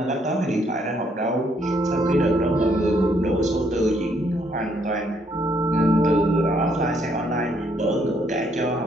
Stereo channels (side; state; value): both; normal; correlation 0.70